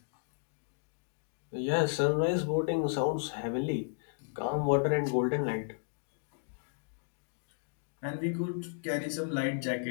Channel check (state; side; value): silent; right; digital silence